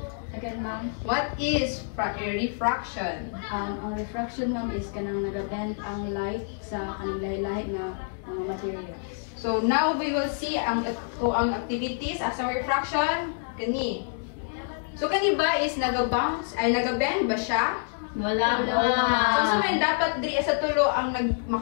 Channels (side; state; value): right; silent; digital silence